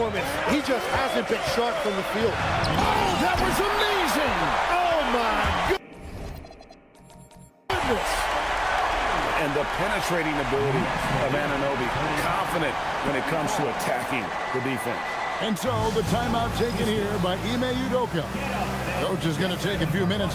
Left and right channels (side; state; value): both; identical; correlation 1.00